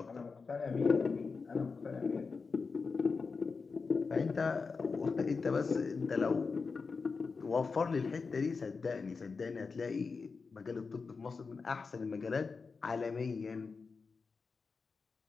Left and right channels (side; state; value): right; quieter; 4.7 dB